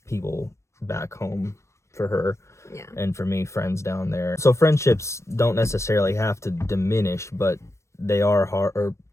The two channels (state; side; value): late; right; 0.14 ms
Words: people back home for her. Yeah. And for me, friends down there. So friendships don't necessarily have to diminish, but they are hard, or